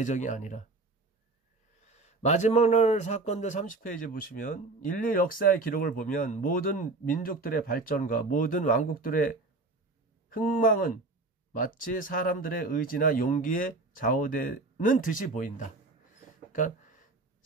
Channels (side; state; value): left; quieter; 3.4 dB